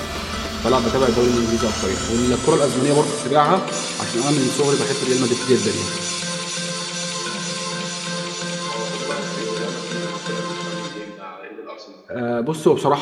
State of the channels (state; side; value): identical; both; correlation 1.00